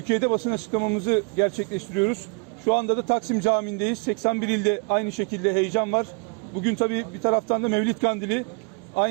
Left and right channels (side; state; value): left; quieter; 34.4 dB